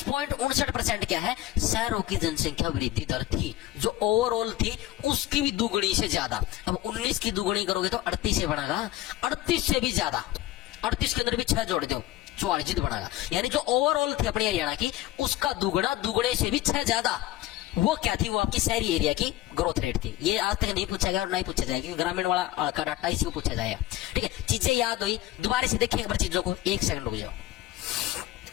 क्या है, शहरों की जनसंख्या वृद्धि दर थी, जो ओवरऑल थी उसकी भी दुगुनी से ज्यादा। अब 19 की दुगुनी करोगे तो 38 से बनेगा, 38 से भी ज्यादा, 38 के अंदर भी 6 जोड़ दो, 44 बनेगा। यानी जो ओवरऑल थी अपनी हरियाणा की, उसका दुगुना, दुगुने से भी 6 ज्यादा। वो क्या थी, वो आपकी शहरी एरिया की ग्रोथ रेट थी। ये आज तक नहीं पूछा गया और नहीं पूछा जाएगा, क्योंकि ग्रामीण वाला का डाटा इसी को पूछा जाएगा, ठीक है। चीजें याद हुई, दोबारा से देखिए एक बार चीजों को, 1 सेकंड रुक जाओ,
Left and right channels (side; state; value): right; quieter; 15.0 dB